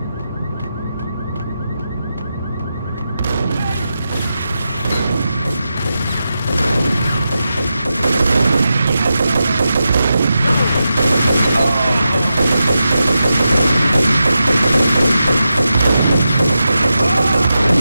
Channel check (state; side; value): inverted; both; correlation -0.89